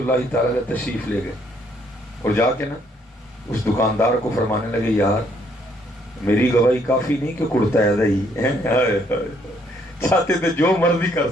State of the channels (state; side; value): normal; both; correlation 0.68